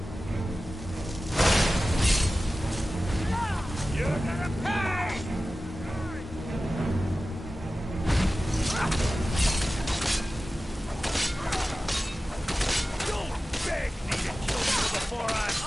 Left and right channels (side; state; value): both; normal; correlation 0.95